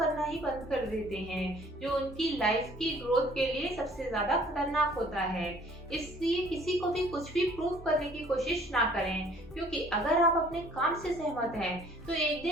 ही बंद कर देते हैं, जो उनकी लाइफ की ग्रोथ के लिए सबसे ज्यादा खतरनाक होता है। इसलिए किसी को भी कुछ भी प्रूव करने की कोशिश ना करें, क्योंकि अगर आप अपने काम से सहमत हैं तो एक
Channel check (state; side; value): normal; both; correlation 0.56